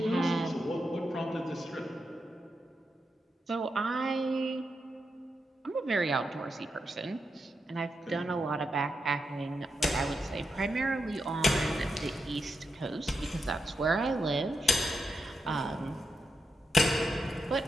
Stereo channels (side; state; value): both; normal; correlation 0.86